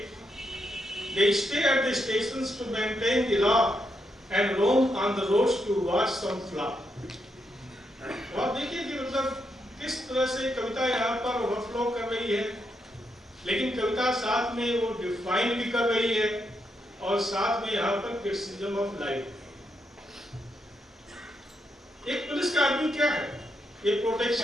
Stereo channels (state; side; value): normal; both; correlation 0.81